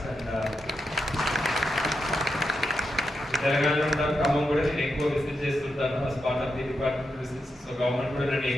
And తెలంగాణలో ఉంటాను, ఖమ్మం కూడా నేను ఎక్కువ విజిట్ చేస్తుంటాను as part of the department visits. So government కూడా నన్ను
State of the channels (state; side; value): normal; both; correlation 0.85